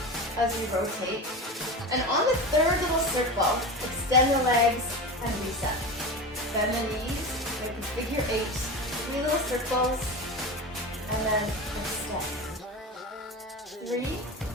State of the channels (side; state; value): both; normal; correlation 0.26